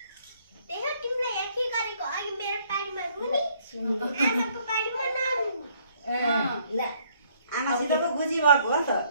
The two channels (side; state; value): both; inverted; correlation -0.65